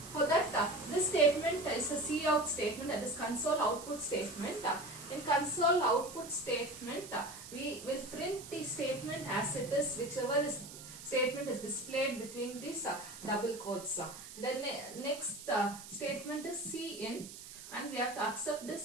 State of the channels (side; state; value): right; noise; hiss, 14 dB below the sound